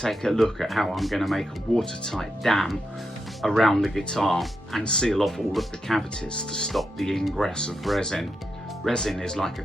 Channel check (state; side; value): normal; both; correlation 0.85